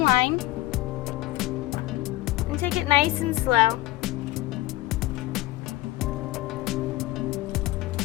line and take it nice and slow.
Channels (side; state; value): right; quieter; 17.4 dB